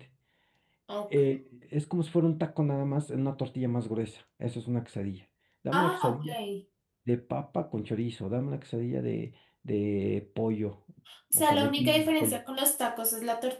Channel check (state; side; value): identical; both; correlation 1.00